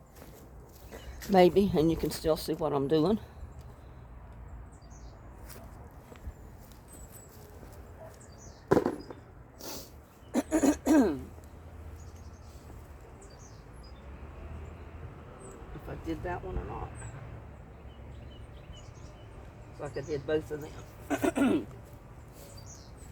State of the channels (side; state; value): both; identical; correlation 1.00